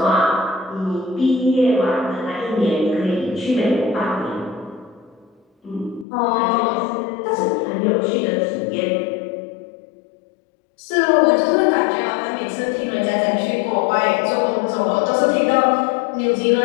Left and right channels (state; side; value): drops out; right; at 6.1 s